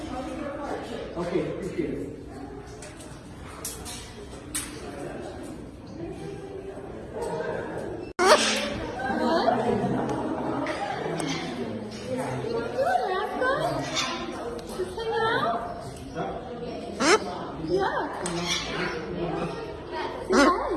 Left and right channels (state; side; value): identical; both; correlation 1.00